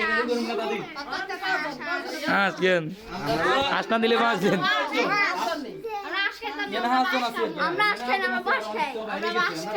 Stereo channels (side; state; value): both; identical; correlation 1.00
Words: করে করুন না দাদি কেন আসনা দিলে পাঁচজন এনা হাত তো আছে আমরা আসছে না আমরা বাস খাই আমরা বাস